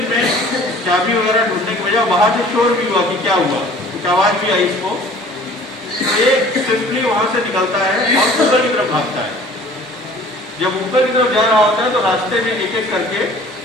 में चाबी वगैरह ढूंढने की बजाय बाहर से शोर भी हुआ कि क्या हुआ, कुछ आवाज भी आई इसको। ये सिंपली वहां से निकलता है और ऊपर की तरफ भागता है। जब ऊपर की तरफ जा रहा होता है तो रास्ते में एक एक करके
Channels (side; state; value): both; normal; correlation 0.49